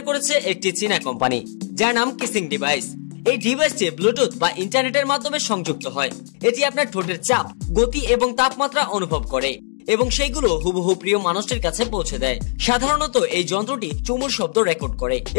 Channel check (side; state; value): right; silent; digital silence